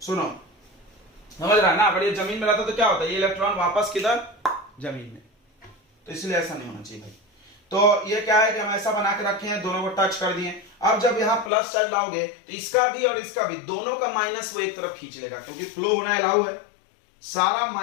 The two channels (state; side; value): drops out; right; at 11.5 s